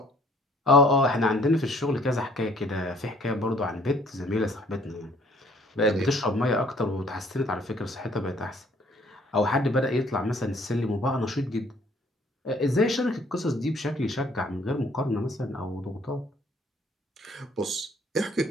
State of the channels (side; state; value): both; normal; correlation 0.59